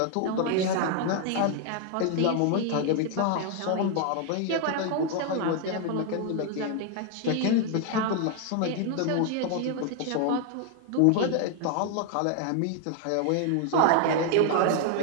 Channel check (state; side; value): different; both; correlation 0.00